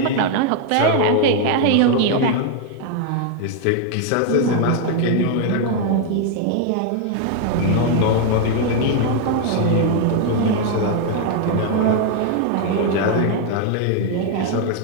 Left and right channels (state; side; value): different; both; correlation 0.00